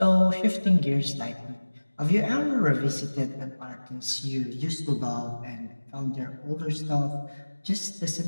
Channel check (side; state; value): both; inverted; correlation -1.00